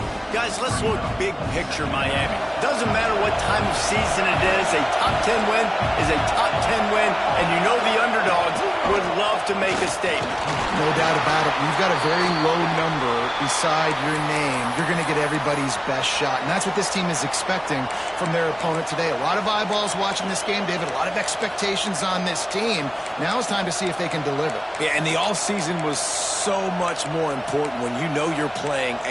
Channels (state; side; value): identical; both; correlation 1.00